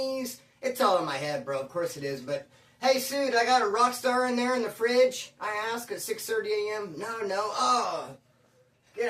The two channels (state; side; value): identical; both; correlation 1.00